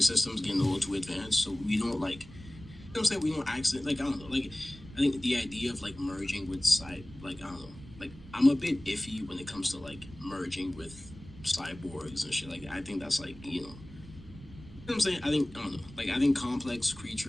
getting a little too advanced, so we don't like, you know what I'm saying, we don't accident, like, I don't know, like, I think the idea of like merging with like, I don't know, like, I'm a bit iffy when it comes to like merging with cyborgs and shit like that. I think that's like, you know what I'm saying? I think, I don't know, like, I think complex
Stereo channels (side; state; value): right; noise; rumble, 17 dB below the sound